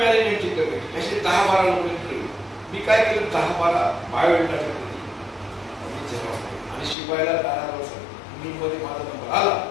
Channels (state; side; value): drops out; right; at 7.0 s